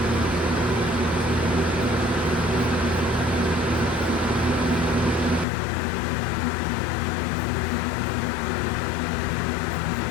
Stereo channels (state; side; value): drops out; right; at 5.5 s